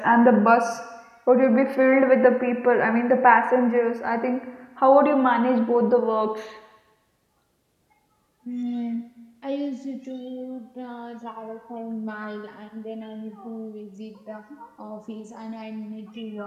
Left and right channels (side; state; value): both; identical; correlation 1.00